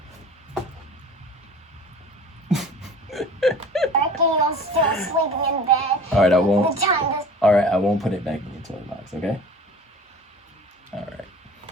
Becky, you're still sleeping in bed. All right, I won't. The time is All right, I won't put it back in your toy box. Okay. All right.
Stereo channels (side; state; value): both; normal; correlation 0.42